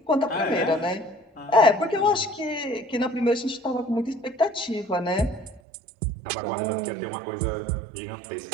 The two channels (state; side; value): drops out; left; at 5.6 s